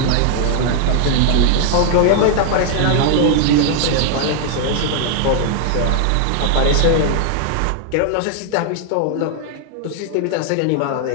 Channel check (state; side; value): different; both; correlation 0.00